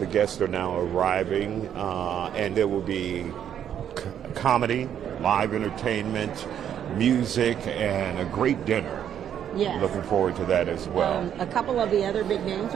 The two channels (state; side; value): quieter; left; 9.5 dB